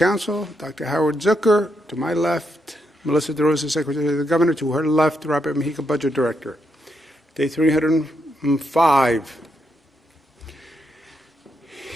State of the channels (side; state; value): both; normal; correlation 0.80